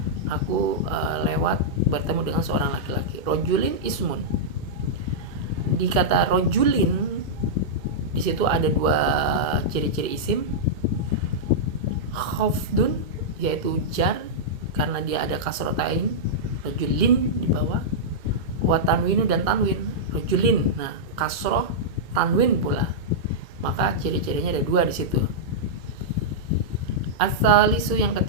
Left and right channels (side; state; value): left; late; 2.3 ms